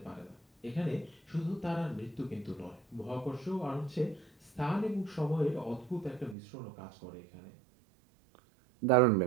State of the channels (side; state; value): left; drops out; at 6.4 s